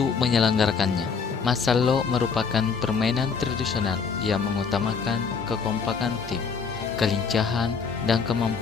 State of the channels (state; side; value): quieter; right; 5.6 dB